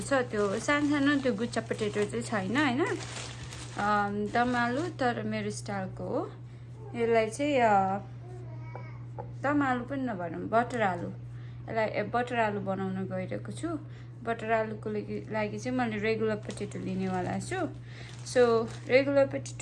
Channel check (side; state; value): both; identical; correlation 1.00